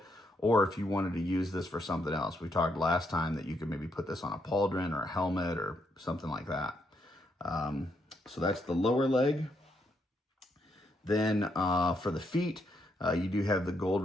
or if you wanted to use this for something else. We talked last time that you could maybe put this on a pauldron or a helmet or something like that. So that's the lower leg. Then for the feet, you do have the gold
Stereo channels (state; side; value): normal; both; correlation 0.77